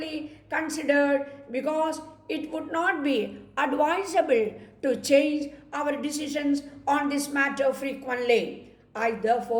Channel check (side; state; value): both; identical; correlation 1.00